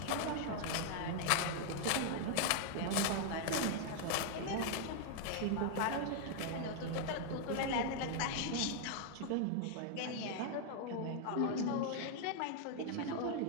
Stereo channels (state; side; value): different; both; correlation 0.00